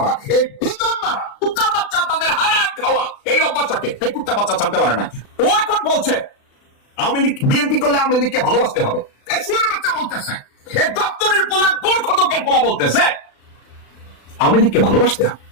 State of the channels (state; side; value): late; right; 36 ms